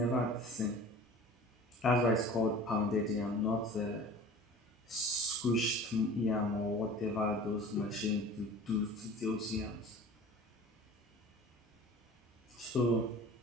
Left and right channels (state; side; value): normal; both; correlation 0.41